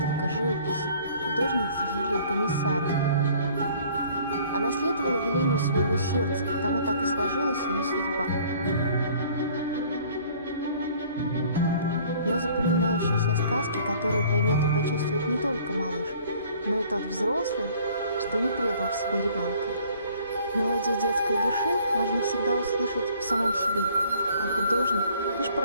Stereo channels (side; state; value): both; inverted; correlation -0.55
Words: живописи художницы Юлии Комиссаровой. Она следовала велению своего сердца, потому так и сложилась ее судьба. Но запоминающиеся сказки, которые поймет и почувствует не только малыш, но и тот взрослый, что не предал в себе ребенка. Мелодию детской души можно всегда услышать в самом себе, а художник — лишь